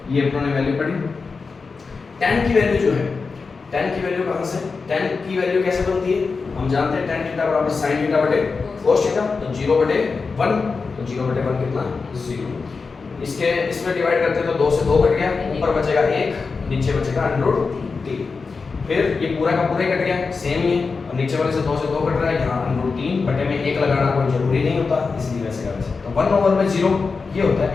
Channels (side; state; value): right; quieter; 4.6 dB